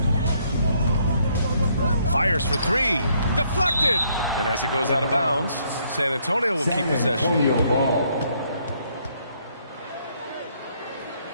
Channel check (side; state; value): both; inverted; correlation -0.69